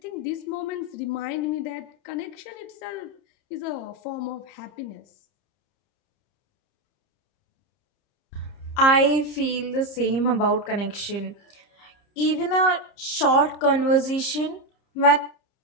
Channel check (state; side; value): late; right; 30 ms